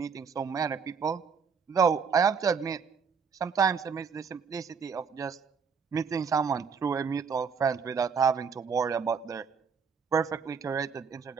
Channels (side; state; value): left; quieter; 6.1 dB